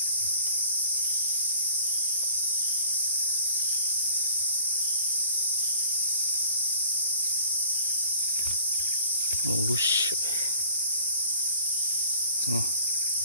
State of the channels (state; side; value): inverted; both; correlation -0.54